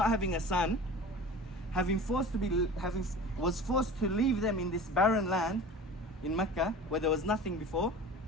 having a son, was forced to leave them in this barren land in Mecca where there was nothing before,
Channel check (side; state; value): both; normal; correlation 0.37